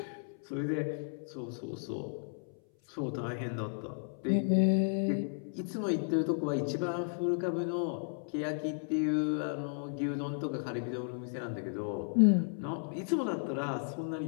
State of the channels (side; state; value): right; silent; 55 dB below the other